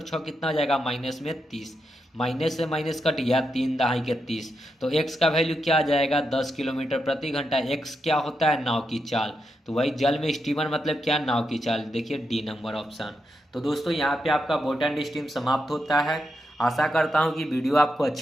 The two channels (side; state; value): both; normal; correlation 0.84